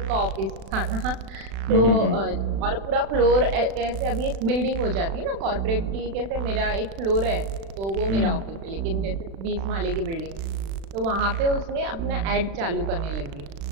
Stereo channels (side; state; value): left; late; 36 ms